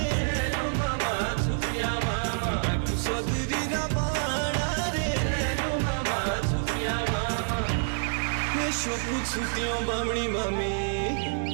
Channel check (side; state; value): left; silent; 60 dB below the other